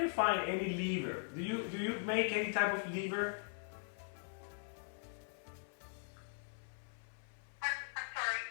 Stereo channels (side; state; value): right; silent; 51 dB below the other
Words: find any liver. Do you make any type of liver? I'm sorry.